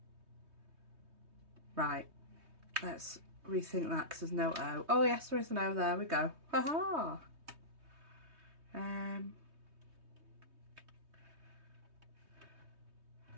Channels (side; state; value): left; late; 3.2 ms